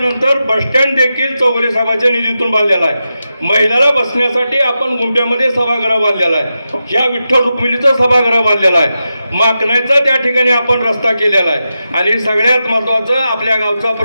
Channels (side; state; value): both; inverted; correlation -0.90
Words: बसस्टँड देखील चौगुले साहेबांच्या निधीतून बांधलेला आहे. महिलाला बसण्यासाठी आपण गुंप्यामध्ये सभागृह बांधलेला आहे. या विठ्ठल रुक्मिणीचा सभागृह बांधलेला आहे. माकणाचा त्या ठिकाणी आपण रस्ता केलेला आहे. आणि सगळ्यात महत्वाचं, आपल्या गावचा